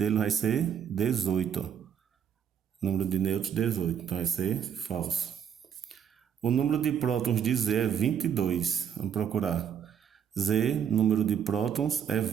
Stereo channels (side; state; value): left; quieter; 8.3 dB